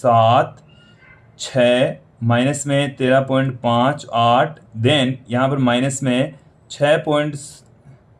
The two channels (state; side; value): identical; both; correlation 1.00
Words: माइनस में 13.58, देन यहाँ पर माइनस में